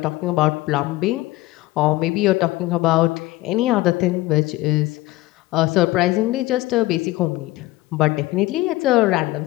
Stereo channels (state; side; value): quieter; right; 18.2 dB